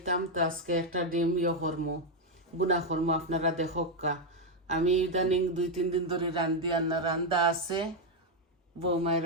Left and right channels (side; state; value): both; normal; correlation 0.03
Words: তো আজকে একটা ডিম করমো, বুনা করমো, আপনারা দেখোকা। আমি ইদানিং 2-3 দিন ধরে রান্ধি, আর না রান্দা আছে, বৌমায়